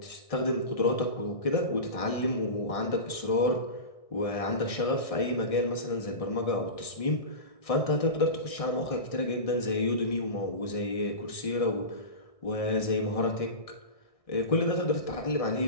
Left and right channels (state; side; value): late; right; 1.6 ms